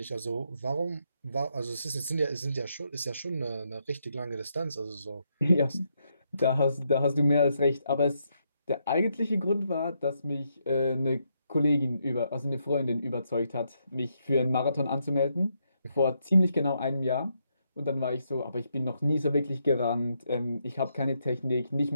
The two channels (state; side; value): inverted; both; correlation -0.78